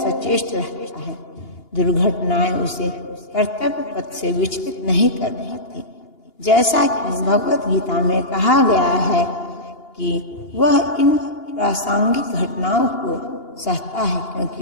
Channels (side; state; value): right; late; 2.8 ms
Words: रहता है। दुर्घटनाएं उसे कर्तव्य पथ से विचलित नहीं कर पाती। जैसा कि भगवत गीता में कहा गया है कि वह इन प्रासंगिक घटनाओं को सहता है,